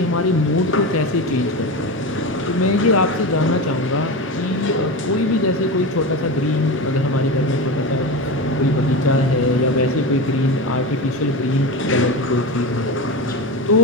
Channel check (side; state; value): both; normal; correlation 0.22